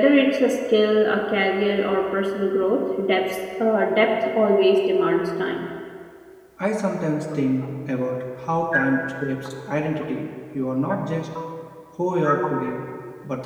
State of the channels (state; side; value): identical; both; correlation 1.00